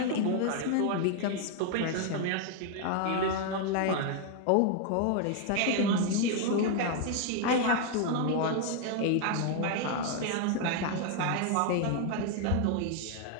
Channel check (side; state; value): both; different; correlation 0.00